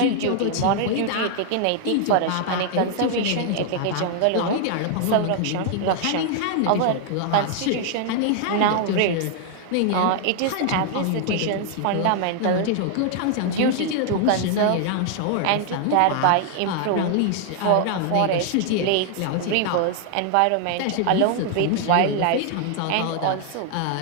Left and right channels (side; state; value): both; different; correlation 0.00